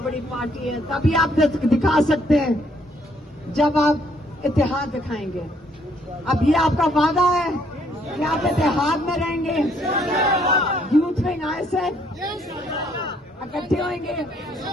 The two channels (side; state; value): both; normal; correlation 0.67